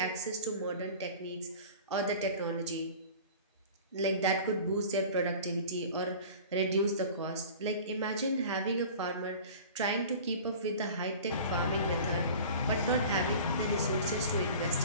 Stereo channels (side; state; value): both; inverted; correlation -0.40